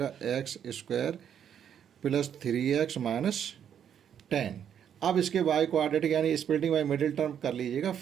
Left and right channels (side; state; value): left; quieter; 8.9 dB